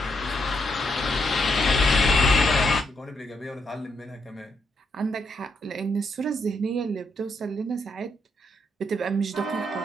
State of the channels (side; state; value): both; normal; correlation 0.78